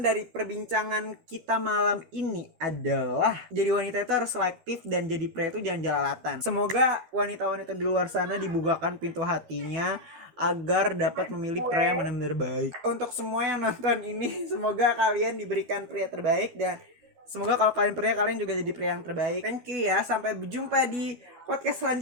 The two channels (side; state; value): left; late; 13 ms